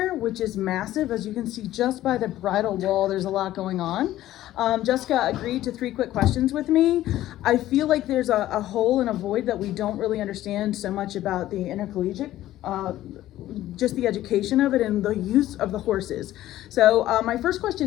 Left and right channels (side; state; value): right; quieter; 14.2 dB